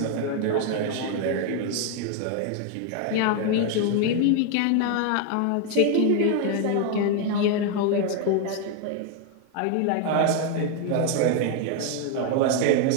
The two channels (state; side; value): different; both; correlation 0.01